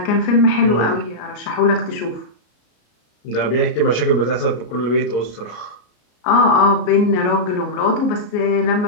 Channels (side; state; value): right; late; 33 ms